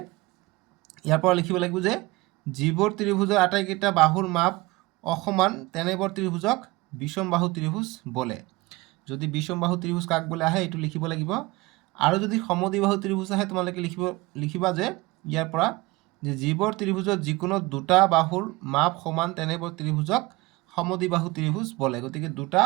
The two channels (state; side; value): quieter; left; 22.1 dB